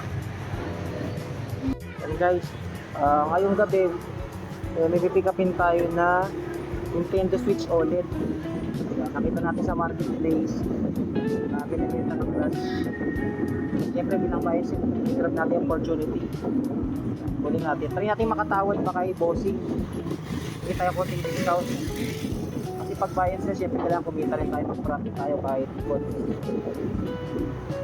Yan guys. Ngayong gabi, may pick upin tayo na Nintendo Switch OLED. Nakita natin sa marketplace. Binibenta ng glass. Siyempre bilang bias, grab natin yung opportunity. Kunin natin. Try natin makatawad baka i-bossing. Hindi tayo konting discount. Kasi pag bias na, siyempre kailangan kumita rin tayo. Mag-profit tayo kahit konti.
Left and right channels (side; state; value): both; identical; correlation 1.00